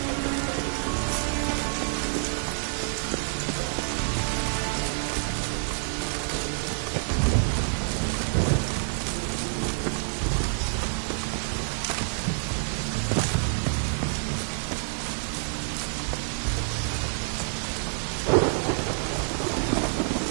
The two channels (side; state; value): left; silent; 60 dB below the other